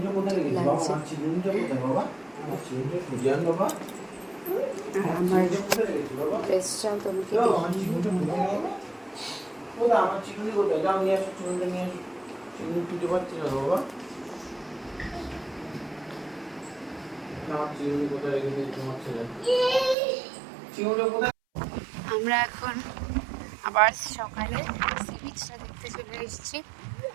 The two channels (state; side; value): drops out; left; at 20.0 s